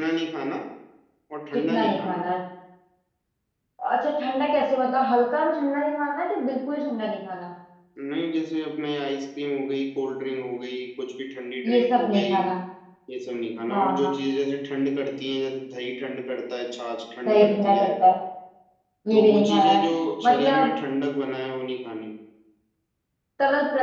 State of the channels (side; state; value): both; identical; correlation 1.00